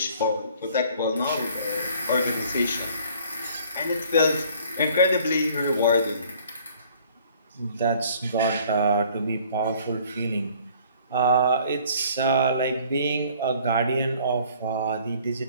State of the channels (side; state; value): both; inverted; correlation -0.55